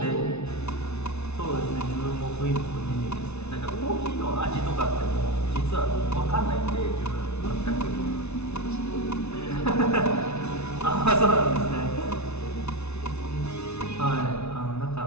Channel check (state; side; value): late; right; 0.81 ms